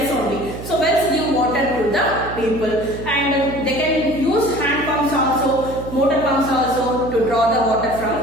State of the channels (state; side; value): noise; right; hum, 11 dB below the sound